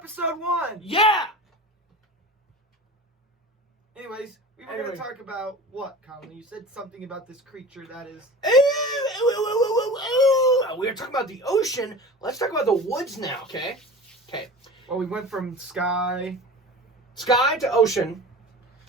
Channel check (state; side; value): normal; both; correlation 0.35